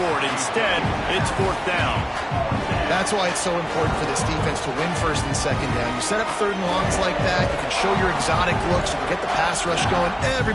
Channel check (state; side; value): identical; both; correlation 1.00